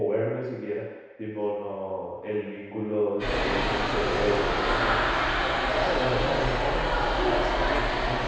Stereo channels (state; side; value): identical; both; correlation 1.00